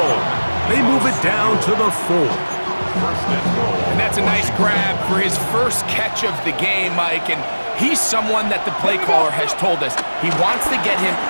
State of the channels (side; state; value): both; inverted; correlation -1.00